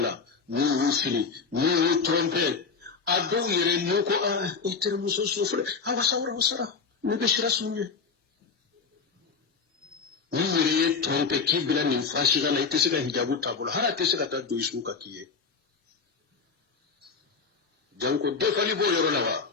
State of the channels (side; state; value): right; quieter; 5.2 dB